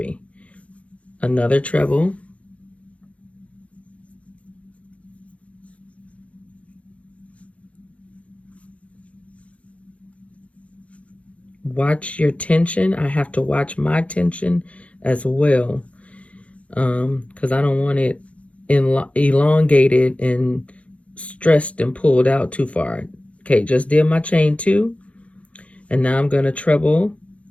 Another treble. Watch your tension. I have to watch my tension as well, because I don't want it elongated and stressed and pulled out too far. Okay, just did my chain 2, and now I'm going to treble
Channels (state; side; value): late; right; 0.064 ms